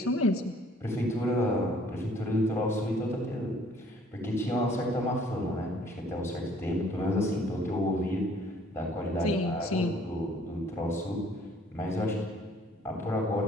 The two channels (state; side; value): normal; both; correlation 0.59